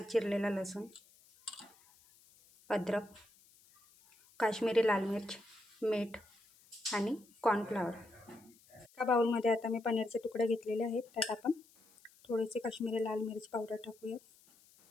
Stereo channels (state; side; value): noise; left; hiss, 28 dB below the sound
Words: चिरलेला लसूण, अद्रक, काश्मीरी लाल मिर्च, मीठ आणि कॉर्नफ्लॉवर. एका बाउलमध्ये आता मी पनीरचे तुकडे घेतलेले आहेत. त्यात आपण थोडेसे काश्मीरी लाल मिर्च पावडर टाकूया,